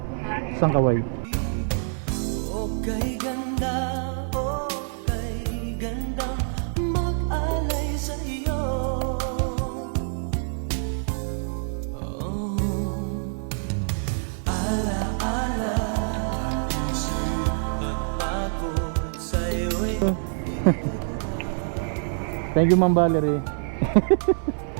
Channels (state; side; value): silent; left; digital silence